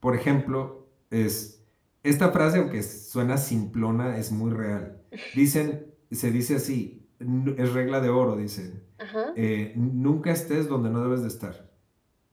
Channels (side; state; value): both; identical; correlation 1.00